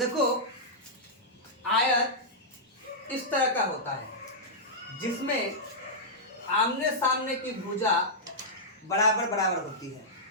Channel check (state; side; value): normal; both; correlation -0.11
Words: आयत इस तरह का होता है जिसमें आमने सामने की भुजा बराबर बराबर होती है,